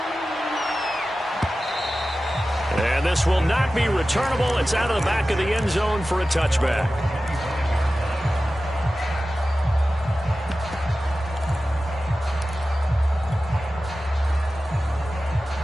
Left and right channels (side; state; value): both; normal; correlation 0.95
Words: And this will not be returnable. It's out of the back of the end zone for a touchback.